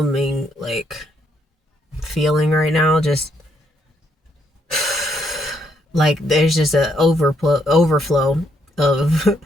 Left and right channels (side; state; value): both; normal; correlation 0.74